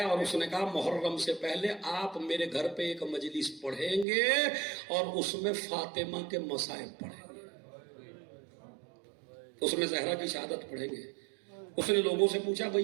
اور اس نے کہا محرم سے پہلے آپ میرے گھر پہ ایک مجلس پڑھیں گے اور اس میں فاطمہ کے مصائب پڑھیں گے, اس میں زہرا کی شہادت پڑھیں گے. اس نے لوگوں سے پوچھا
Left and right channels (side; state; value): left; drops out; at 4.0 s